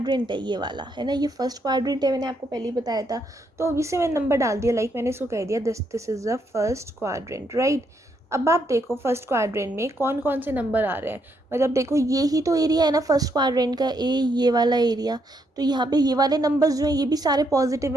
है ये वाला है ना, ये फर्स्ट क्वाड्रेंट है, मैंने आपको पहले ही बताया था. तो अभी से मैंने नंबर डाल दिया, लाइक मैंने इसको कह दिया this is the first quadrant, right. अब आप देखो फर्स्ट क्वाड्रेंट में कौन कौन से नंबर आ रहे हैं. मतलब देखो ये ही तो एरिया है ना फर्स्ट क्वाड्रेंट का, ये वाला एरिया. तो यहाँ पे ये वाले नंबर्स जो हैं ये भी सारे पॉजिटिव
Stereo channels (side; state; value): both; normal; correlation 0.76